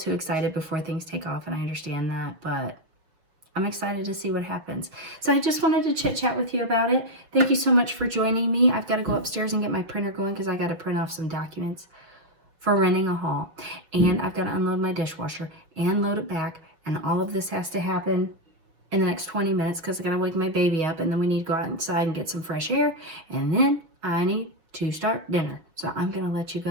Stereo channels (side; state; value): left; late; 6.3 ms